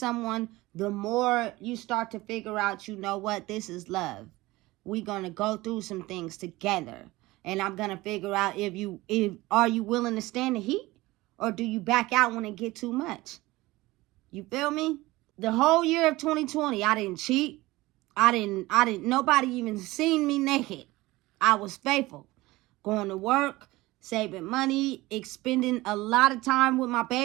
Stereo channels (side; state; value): left; quieter; 19.6 dB